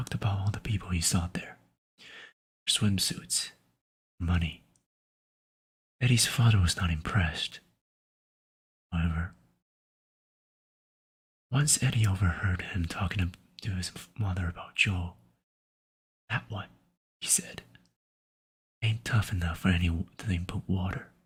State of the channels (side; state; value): both; identical; correlation 1.00